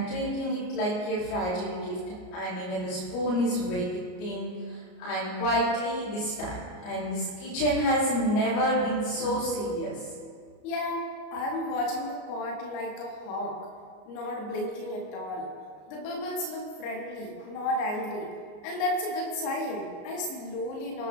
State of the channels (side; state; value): right; late; 33 ms